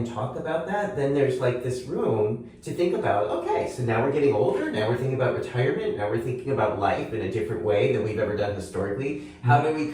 talk about that, then there's this room to think about, okay, so now we're getting older, now we're thinking about retirement, now we're thinking about life in a different way than we've ever done historically. How do we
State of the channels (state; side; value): identical; both; correlation 1.00